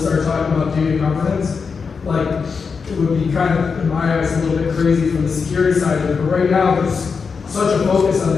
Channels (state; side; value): quieter; right; 5.4 dB